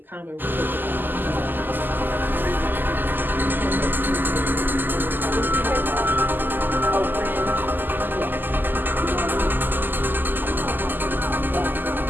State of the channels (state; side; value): late; left; 0.090 ms